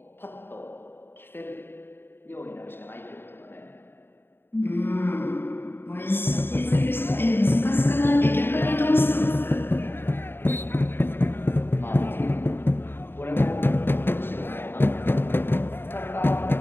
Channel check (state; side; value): late; right; 0.10 ms